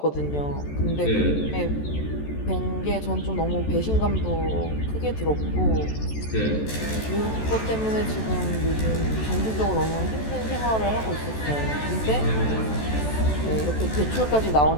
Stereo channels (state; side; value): late; right; 14 ms